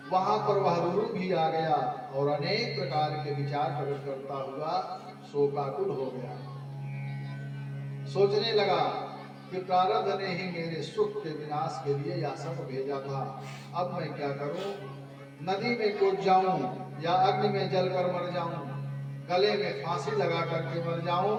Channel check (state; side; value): identical; both; correlation 1.00